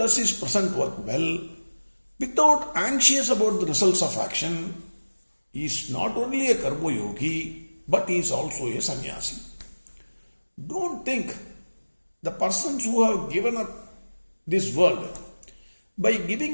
his present work well, without anxious about the results of action, is not only a karma yogi, but he is also a sannyasi. Don't think the persons who have given up this world by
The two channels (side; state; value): both; inverted; correlation -1.00